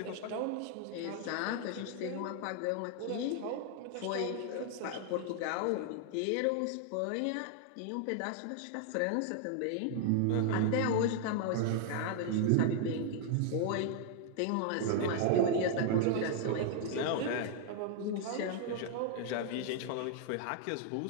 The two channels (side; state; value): both; different; correlation 0.00